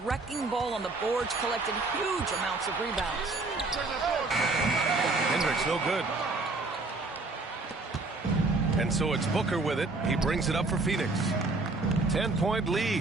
ball on the boards, collecting huge amounts of rebounds. Hendricks no good. And so it's Booker with it. He brings it up for Phoenix. 10-point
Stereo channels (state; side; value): quieter; left; 3.4 dB